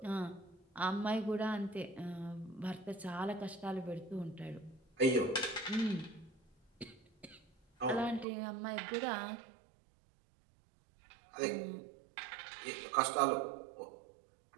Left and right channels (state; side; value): drops out; left; at 8.2 s